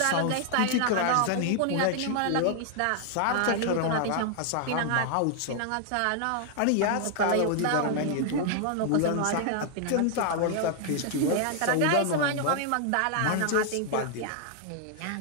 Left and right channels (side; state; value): both; different; correlation 0.00